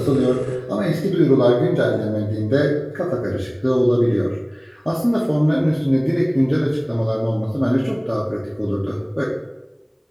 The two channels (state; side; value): identical; both; correlation 1.00